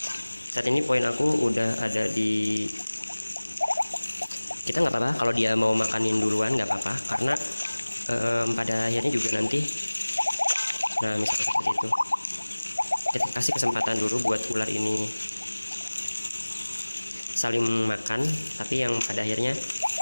Saat ini poin aku udah ada di, kita nggak apa-apa kalau dia mau makanin duluan, nggak apa-apa, karena pada akhirnya juga nanti, nah misalnya seperti itu, kita kasih kesempatan dulu buat ular ini saling makan, tapi yang pada akhirnya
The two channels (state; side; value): inverted; both; correlation -1.00